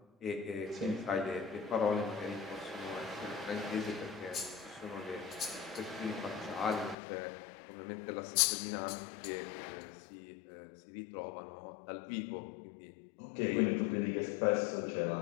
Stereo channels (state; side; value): drops out; right; at 7.0 s